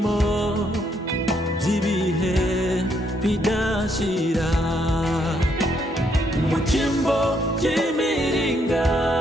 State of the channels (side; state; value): both; normal; correlation 0.73